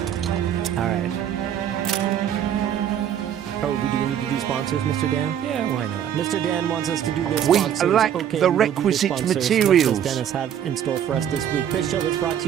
All right. Oh, do we need to do sponsors, Mr. Dan? Yeah, why not? Mr. Dan wants us to do the We sponsors. lack Okay, the we will do requisite sponsors. materials. What does Dennis have in store for us this week? This show is brought to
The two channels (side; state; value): left; quieter; 9.6 dB